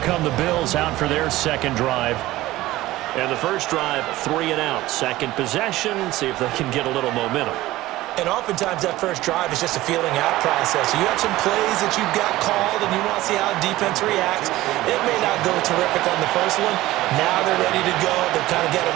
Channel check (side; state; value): left; quieter; 17.0 dB